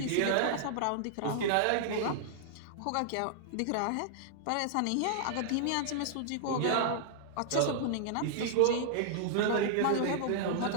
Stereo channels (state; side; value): different; both; correlation -0.01